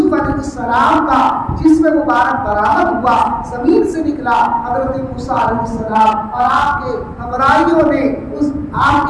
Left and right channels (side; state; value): both; identical; correlation 1.00